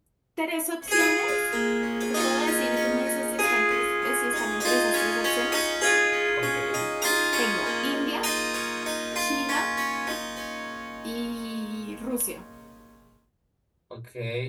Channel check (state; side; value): identical; both; correlation 1.00